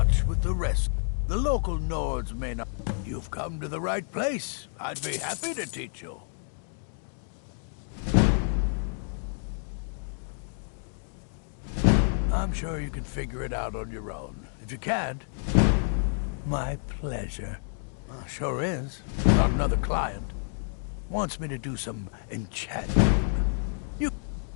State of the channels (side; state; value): right; silent; digital silence